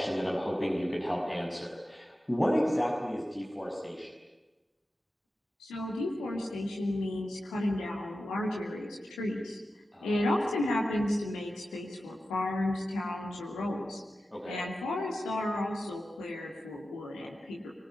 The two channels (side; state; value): both; normal; correlation 0.93